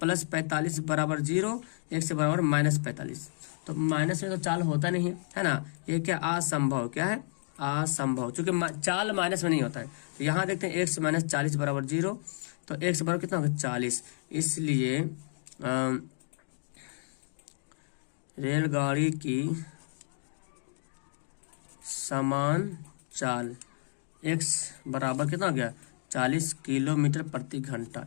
45 बराबर 0, 1 से बराबर -45। तो माइनस में तो चाल होता नहीं है ना, ये क्या असंभव, क्या है असंभव, चूंकि चाल माइनस में नहीं होता है। तो यहाँ देखते हैं 1 से -40 बराबर 0, तो 1 से बराबर कितना होगा 40। इसलिए रेलगाड़ी की समान चाल, x बराबर कितना हो गया 40 किलोमीटर प्रति घंटा।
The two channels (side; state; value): right; silent; digital silence